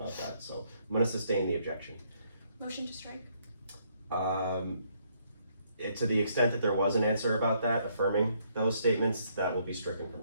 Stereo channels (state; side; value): inverted; both; correlation -0.70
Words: that, so I'm gonna sustain the objection. Motion to strike. To the extent that there was an answer about that, affirming those statements, that will be stricken from